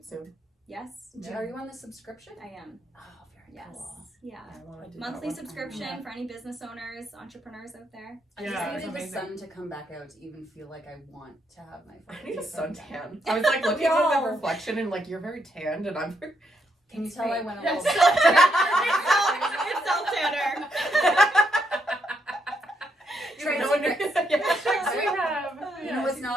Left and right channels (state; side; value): normal; both; correlation 0.77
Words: soon. Yes. Are you on the subscription? I am. Oh, very Yes. cool. Yeah. I wanna do Monthly that one. subscription for any business owners, entrepreneurs out there. I Yeah, just it's needed the amazing. sun to come back out to even feel like I want to have my I need a photos. suntan. I was like looking at No. the reflection and like you're very tanned and I'm very... Can you tell I went a Yes. little It's self-tanner. Trade No wonder- secrets. Yeah. Yes, we have. You know what's